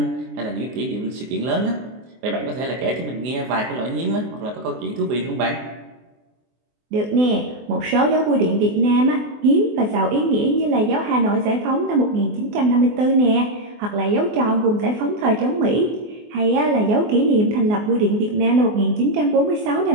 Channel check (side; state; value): left; late; 24 ms